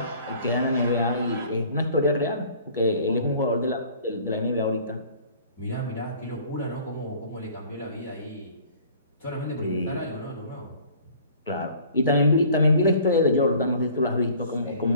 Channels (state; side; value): inverted; both; correlation -0.51